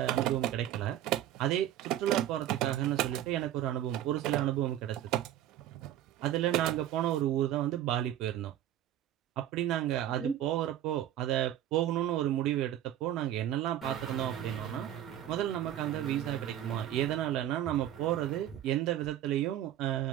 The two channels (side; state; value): left; quieter; 12.1 dB